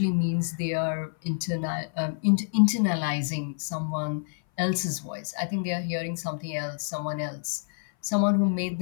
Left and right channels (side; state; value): right; silent; 58 dB below the other